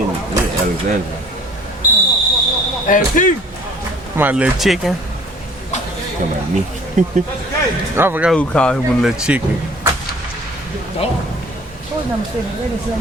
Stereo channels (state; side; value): normal; both; correlation 0.51